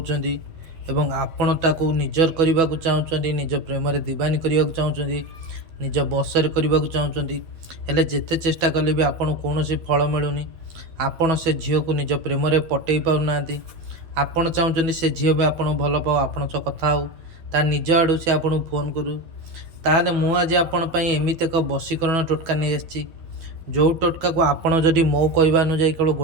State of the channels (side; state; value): left; late; 12 ms